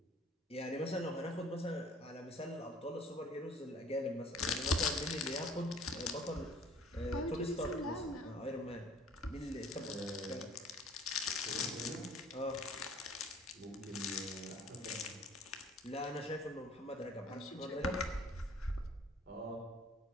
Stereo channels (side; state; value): both; normal; correlation 0.51